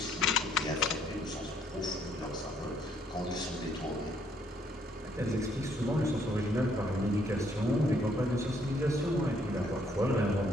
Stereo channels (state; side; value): normal; both; correlation 0.68